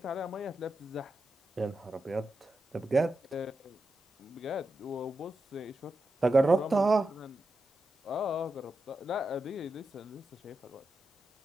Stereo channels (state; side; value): normal; both; correlation 0.88